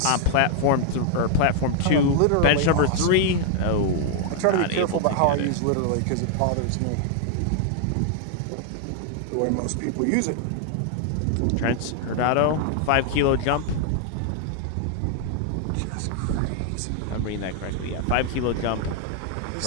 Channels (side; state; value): both; different; correlation 0.00